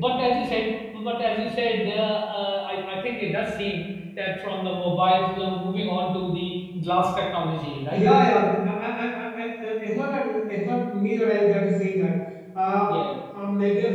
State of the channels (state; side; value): identical; both; correlation 1.00